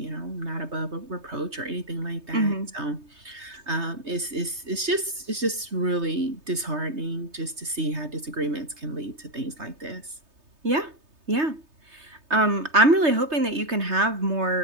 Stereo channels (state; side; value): late; left; 3.3 ms